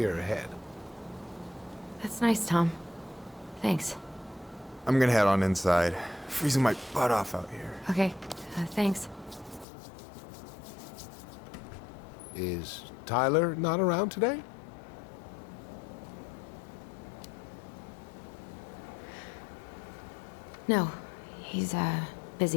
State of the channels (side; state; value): right; drops out; at 9.7 s